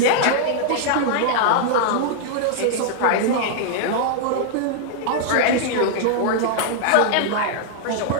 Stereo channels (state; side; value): different; both; correlation -0.01